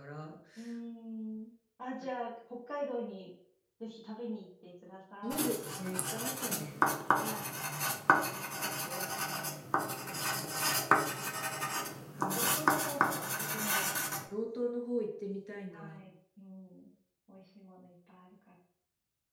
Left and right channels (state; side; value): identical; both; correlation 1.00